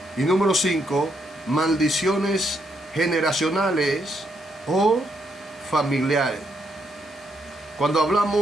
Y número 5, maldiciones generacionales o familiares. Cuando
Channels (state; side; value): normal; both; correlation 0.77